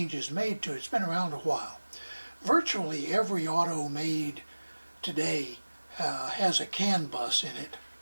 made to it. It's been around a while. Virtually every auto made today has a CAN bus in it,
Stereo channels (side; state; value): both; inverted; correlation -1.00